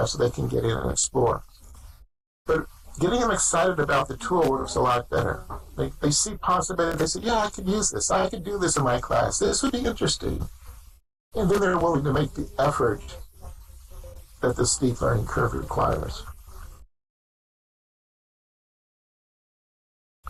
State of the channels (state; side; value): identical; both; correlation 1.00